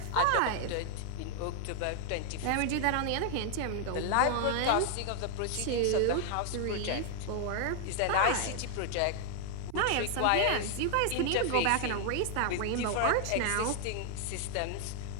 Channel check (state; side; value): different; both; correlation 0.00